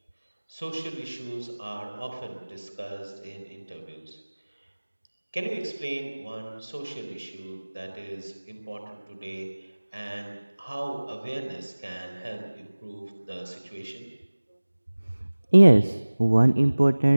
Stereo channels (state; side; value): inverted; both; correlation -1.00